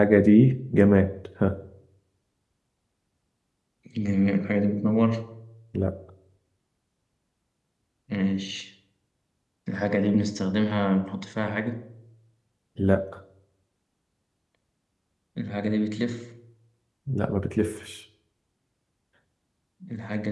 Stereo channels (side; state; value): both; identical; correlation 1.00